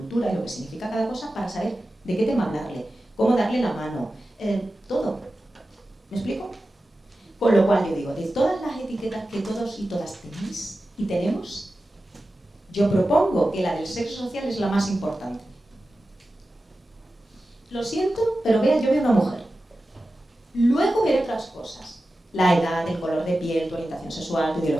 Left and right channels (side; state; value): both; normal; correlation 0.94